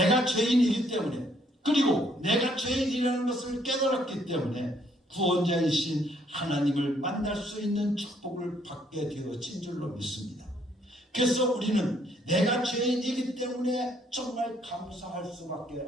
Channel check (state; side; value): normal; both; correlation 0.67